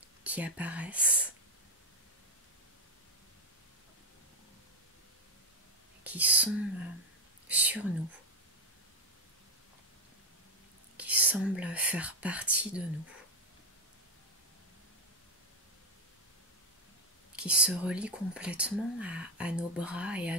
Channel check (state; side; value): normal; both; correlation 0.07